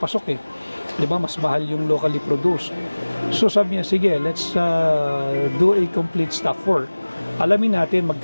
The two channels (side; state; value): both; inverted; correlation -1.00